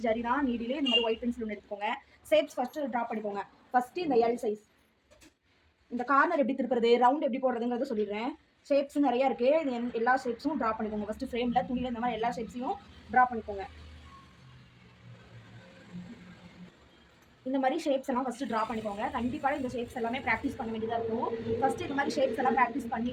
ஜரி தான் நீடிலே இந்த மாதிரி ஒயிட் பென்சில் ஒன்று எடுத்துக்கோங்க. ஷேப்ஸ் ஃபர்ஸ்ட் ட்ரா பண்ணிக்கோங்க. ஃபர்ஸ்ட் இந்த எல் சைஸ், இந்த கார்னர் எப்படி திருப்புறது, ரவுண்ட் எப்படி போடுறதுங்கிறத சொல்லிடுறேன். ஷேப்ஸ் நிறைய இருக்கு. எல்லா ஷேப்ஸும் ட்ரா பண்ணிக்கோங்க. ஃபர்ஸ்ட் ஃப்ரேம்ல துணியில இந்த மாதிரி எல்லா ஷேப்ஸையும் ட்ரா பண்ணிக்கோங்க. இந்த மாதிரி ஷேப்ஸ் எல்லாம் ஃபர்ஸ்ட் ட்ரா பண்ணிக்கோங்க. கண்டிப்பாக இந்த ஷேப்ஸ் எல்லாமே ப்ராக்டிஸ் பண்ண வேண்டியதாக இருக்கும். ஃபர்ஸ்ட் இந்த மாதிரி ஷேப்ஸ் எல்லாம் ப்ராக்டிஸ்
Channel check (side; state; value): both; identical; correlation 1.00